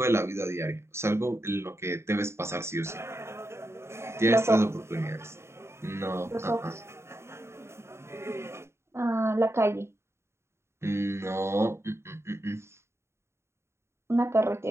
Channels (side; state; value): left; late; 0.13 ms